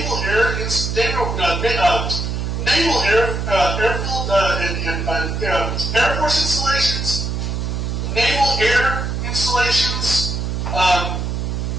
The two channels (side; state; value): right; noise; hum, 2 dB below the sound